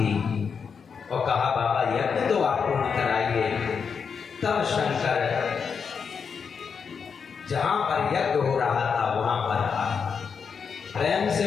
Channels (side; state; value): right; quieter; 6.1 dB